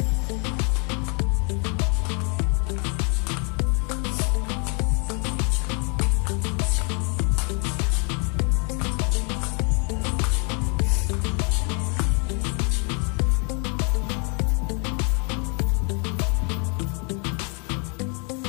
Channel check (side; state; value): right; quieter; 35.0 dB